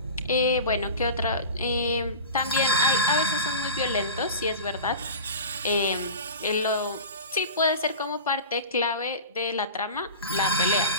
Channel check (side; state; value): both; inverted; correlation -0.33